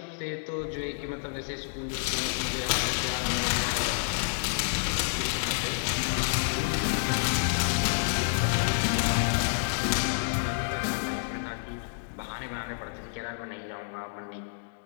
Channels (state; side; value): silent; right; digital silence